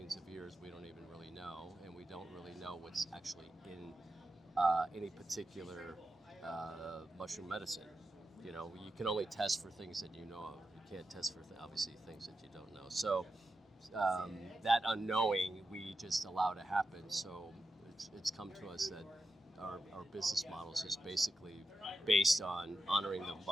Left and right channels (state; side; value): normal; both; correlation 0.88